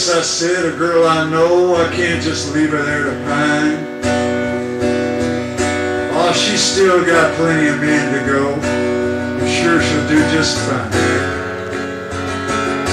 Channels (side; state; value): both; identical; correlation 1.00